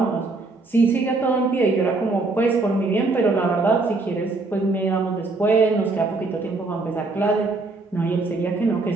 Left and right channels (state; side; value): quieter; left; 3.5 dB